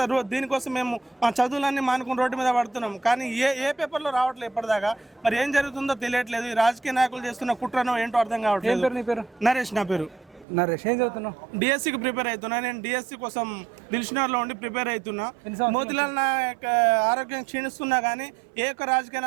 దీనికోసం మేము మా చదువులన్నీ మానుకుని రోడ్డు మీద పడుతున్నాం కానీ ఏ పేపర్లో రావట్లేదు ఇప్పటిదాకా. మరి ఏం జరుగుతుందో తెలియట్లేదు. ఈ రాజకీయ నాయకులు చేస్తున్న కుట్రనో ఏంటో అర్థం కావట్లేదు. నరేష్ నా పేరు. నరేష్, ఏం చదువుతున్నావు? డిఎస్సికి ప్రిపేర్ అవుతున్నా. నేను డిఎస్సి కోసం దిల్షునగర్లో ఉండి ప్రిపేర్ అవుతున్నా. మోతిలాల్ నాయక్ ఆరోగ్యం క్షీణిస్తున్నా కానీ ఏ ఒక్క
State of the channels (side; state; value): left; drops out; at 10.5 s